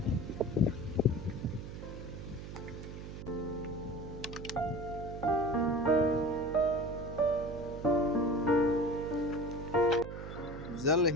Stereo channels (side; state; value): right; noise; hum, 10 dB below the sound